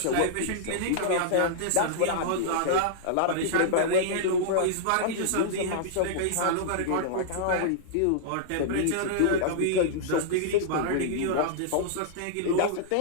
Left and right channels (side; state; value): both; different; correlation -0.02